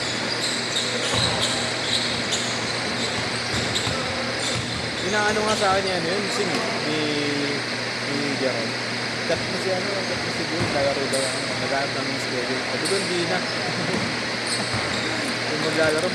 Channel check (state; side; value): identical; both; correlation 1.00